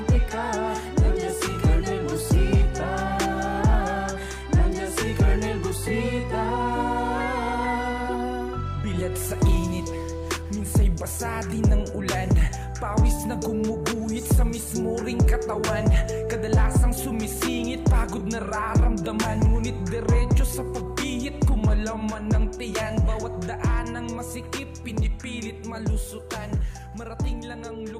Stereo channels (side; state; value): both; identical; correlation 1.00